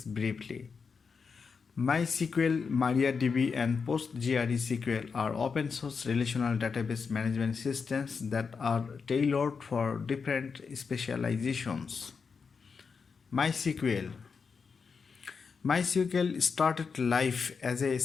briefly. MySQL, MariaDB, and PostgreSQL are open source relational database management systems that are tailored for different specializations. MySQL MySQL started life as a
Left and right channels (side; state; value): right; quieter; 5.5 dB